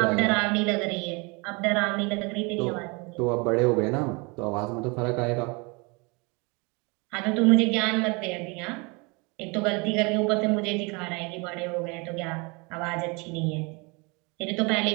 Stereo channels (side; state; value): left; quieter; 29.0 dB